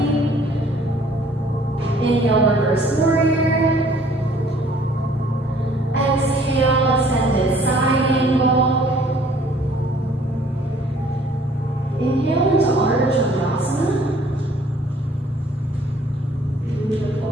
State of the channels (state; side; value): normal; both; correlation 0.57